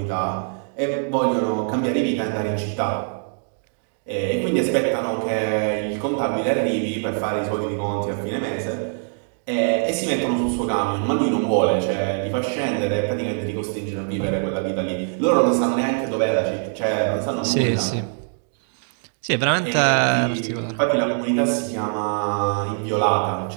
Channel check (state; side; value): silent; left; 61 dB below the other